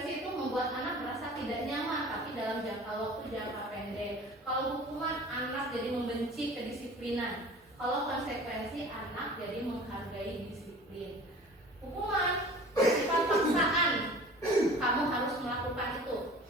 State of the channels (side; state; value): both; normal; correlation 0.43